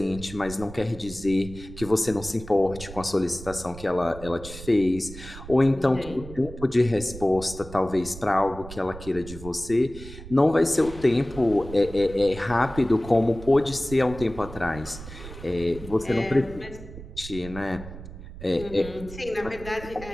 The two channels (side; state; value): right; noise; rumble, 14 dB below the sound